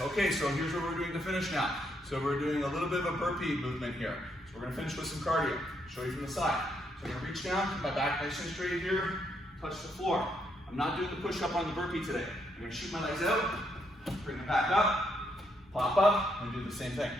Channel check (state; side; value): normal; both; correlation 0.76